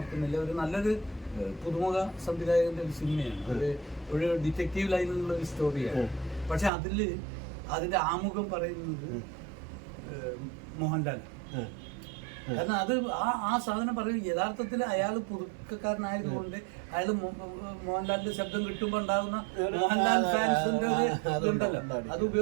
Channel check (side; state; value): left; drops out; at 6.7 s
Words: ഒരു നല്ലൊരു പുതുമുഖ സംവിധായകന്റെ ഒരു സിനിമയാണ്, ഒരു ഡിറ്റക്റ്റീവ് ലൈനിലുള്ള ഒരു സ്റ്റോറിയാണ്. പക്ഷെ അതിന്റെ ആമുഖം പറയുന്നത് മോഹൻലാൽ. കാരണം അത് ആ സാധനം പറയും. യഥാർത്ഥത്തിൽ അയാൾ പുതുക്കക്കാരനായതുകൊണ്ട് അയാൾ മോഹൻലാലിന്റെ ശബ്ദം കിട്ടുമ്പോൾ ഉണ്ടാകുന്ന മോഹൻലാൽ ഫാൻസിന്റെ ഒരു ഇതുണ്ടല്ലോ, അത്